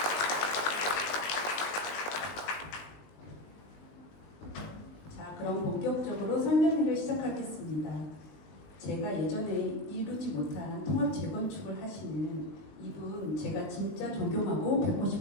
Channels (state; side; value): late; right; 20 ms